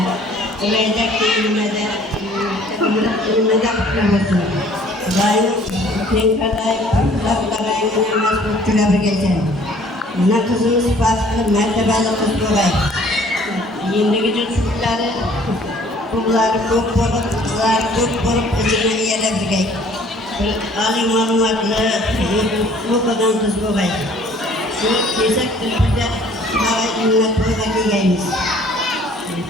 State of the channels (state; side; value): normal; both; correlation 0.55